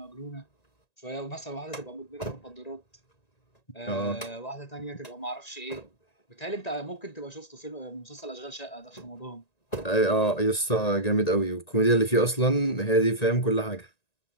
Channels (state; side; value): late; right; 1.9 ms